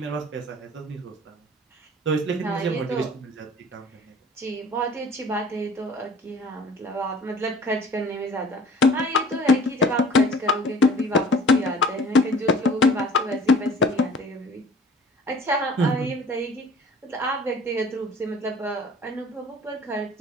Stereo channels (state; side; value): normal; both; correlation 0.48